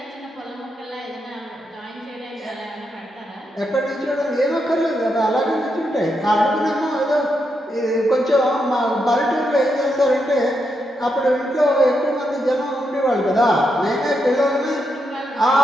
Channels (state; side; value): normal; both; correlation 0.82